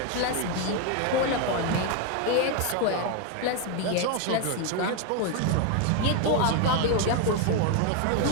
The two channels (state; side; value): different; both; correlation 0.01